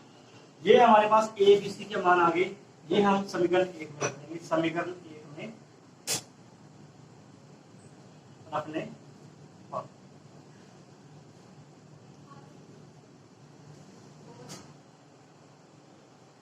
ये हमारे पास ए बी सी के मान आ गए। ये हम समीकरण 1 में रखेंगे। समीकरण 1 में रखने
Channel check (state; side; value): identical; both; correlation 1.00